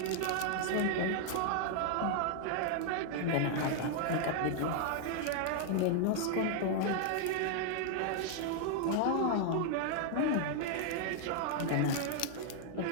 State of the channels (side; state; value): both; different; correlation 0.00